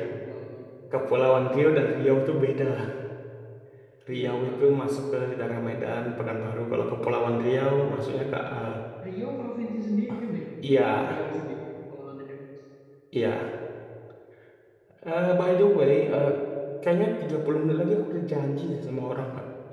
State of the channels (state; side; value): identical; both; correlation 1.00